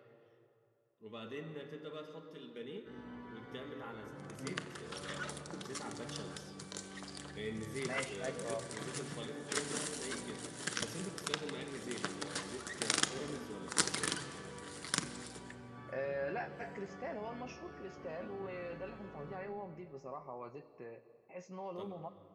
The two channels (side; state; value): both; identical; correlation 1.00